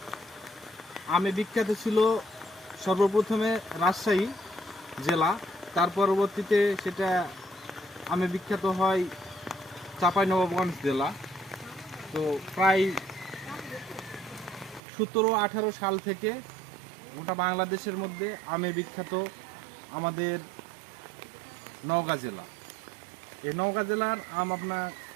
আমে বিখ্যাত ছিল সর্বপ্রথমে রাজশাহী জেলা, তার পরবর্তীতে সেটা আমে বিখ্যাত হয় চাঁপাইনবাবগঞ্জ জেলা। তো প্রায় 17-18 সাল থেকে গোটা বাংলাদেশের মধ্যে আমে বিখ্যাত আমাদের নওগাঁ জেলা। এই নওগাঁ জেলার আম আপনার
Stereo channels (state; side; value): drops out; left; at 14.8 s